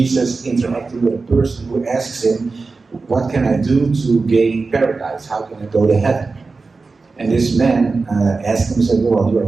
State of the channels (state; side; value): quieter; left; 4.1 dB